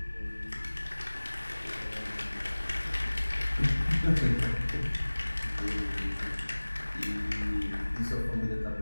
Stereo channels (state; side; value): inverted; both; correlation -1.00